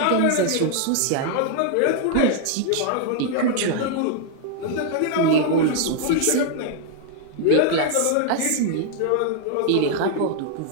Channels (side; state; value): both; different; correlation 0.00